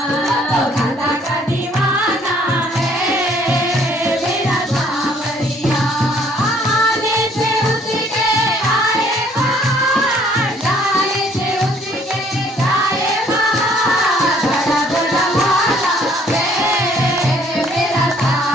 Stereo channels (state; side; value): normal; both; correlation 0.61